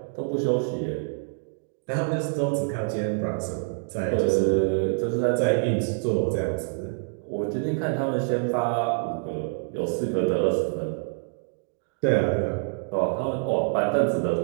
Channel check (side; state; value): left; silent; digital silence